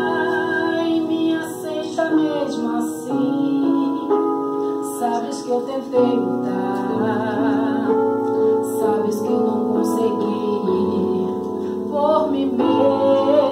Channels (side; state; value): both; identical; correlation 1.00